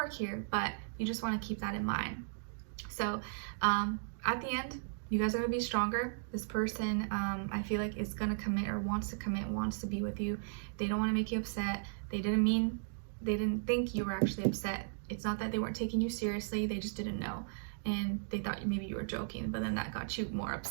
here, but you just want to keep that in mind. So at the end, you guys are going to be stronger. This person, I feel like, is going to commit or wants to commit, wants to be with you. They don't want to make you upset. They didn't think you were actually upset. It's not that they weren't taking you seriously. They just didn't know. And they thought maybe you were joking, but then that got you more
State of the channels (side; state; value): left; silent; digital silence